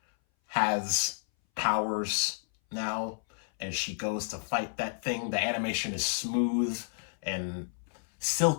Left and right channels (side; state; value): right; silent; 57 dB below the other